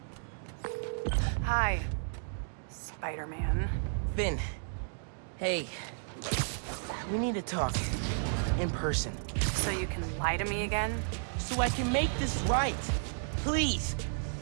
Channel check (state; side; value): silent; left; digital silence